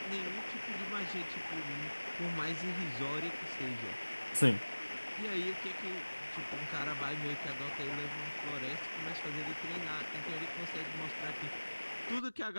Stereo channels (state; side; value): inverted; both; correlation -1.00